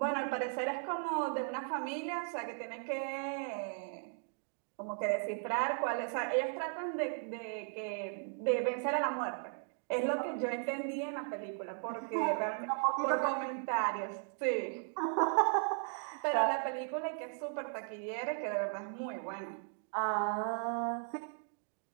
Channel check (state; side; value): silent; left; 53 dB below the other